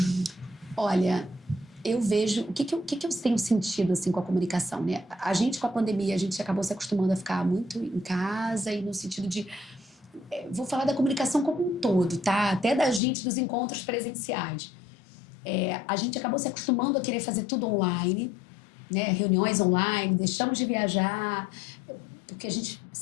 Olha, eu vejo... O que eu tenho sentido assim, com a comunicação? Né? A gente, com a pandemia, a gente acabou se acostumando a ficar muito em casa e no sentido de... Vou falar da comunicação como um todo, tá? Até da gente, dos encontros presenciais. A gente acabou se acostumando a querer fazer tudo online, né? Reuniões online, deixamos de viajar, porque a gente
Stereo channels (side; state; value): right; drops out; at 13.0 s